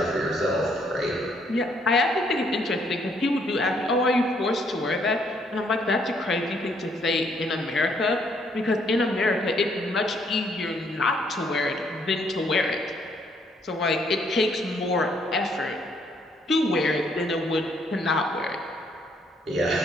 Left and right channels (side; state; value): both; normal; correlation 0.69